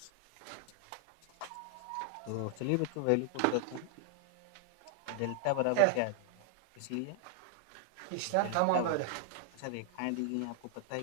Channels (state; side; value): different; both; correlation -0.01